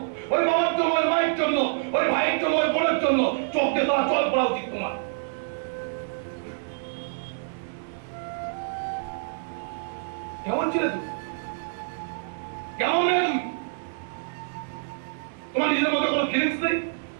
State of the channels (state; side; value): silent; left; 60 dB below the other